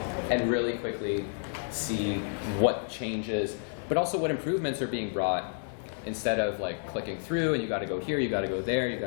and really quickly see what changes, but also what improvements are being brought, instead of like clicking through and you got to go here, you got to go there, you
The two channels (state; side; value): silent; right; 58 dB below the other